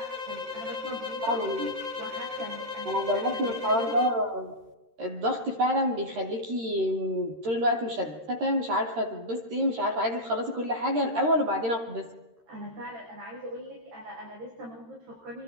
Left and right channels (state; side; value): late; left; 13 ms